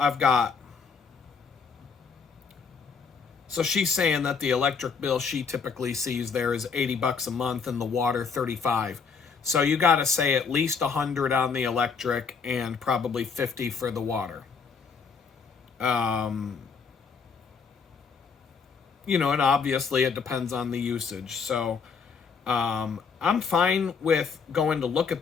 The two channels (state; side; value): quieter; right; 5.6 dB